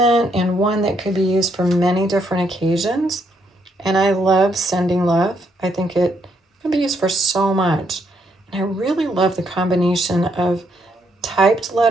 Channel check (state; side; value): normal; both; correlation 0.74